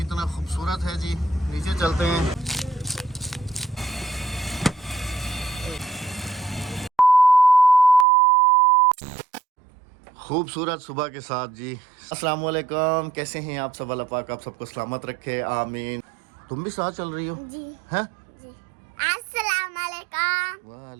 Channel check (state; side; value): drops out; left; at 8.1 s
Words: खूबसूरत है जी। नीचे चलते हैं। खूबसूरत सुबह के साथ जी। अस्सलाम वालेकुम, कैसे हैं आप सब? अल्लाह पाक आप सबको सलामत रखे, आमीन। तुम भी साथ चल रही हो जी हैं? जी। अस्सलाम वालेकुम।